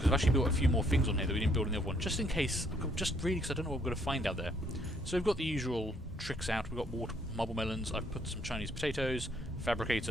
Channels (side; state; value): both; normal; correlation 0.68